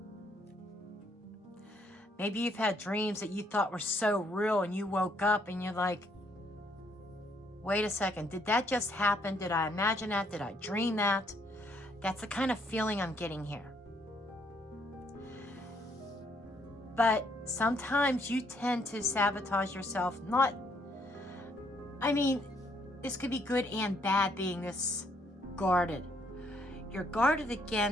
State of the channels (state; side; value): normal; both; correlation 0.70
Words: Maybe you've had dreams that you thought were so real and you woke up and you're like, wait a second, did that just happen? Did I imagine that? Did I dream that? That's the kind of feeling I'm getting here. But sometimes you tend to sabotage yourself. This could be good and bad being this guarded. You're guarded